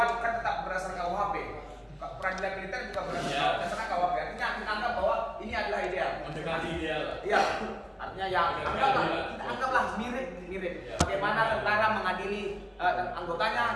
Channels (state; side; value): identical; both; correlation 1.00